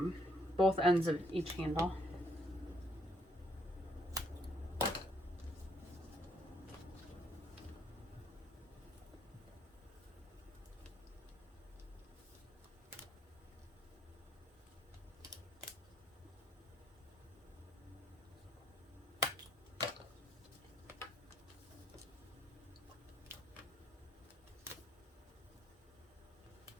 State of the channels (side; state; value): both; normal; correlation 0.70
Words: both ends of each handle.